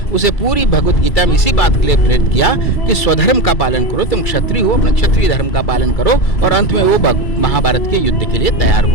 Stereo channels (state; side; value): late; right; 2.3 ms